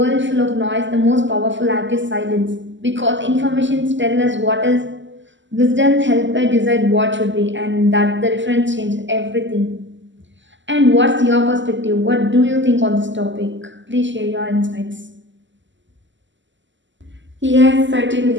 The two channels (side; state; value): left; late; 0.54 ms